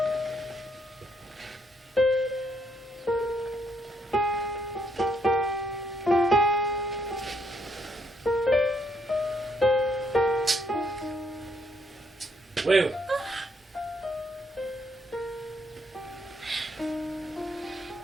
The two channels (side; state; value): both; normal; correlation 0.72